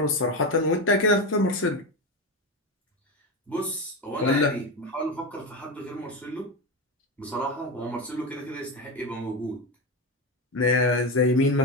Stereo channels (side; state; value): both; normal; correlation 0.17